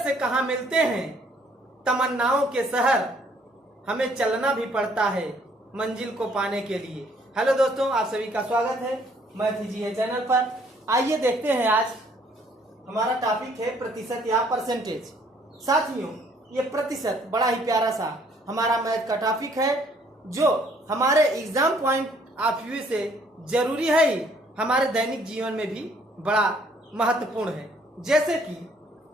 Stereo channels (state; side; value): normal; both; correlation 0.63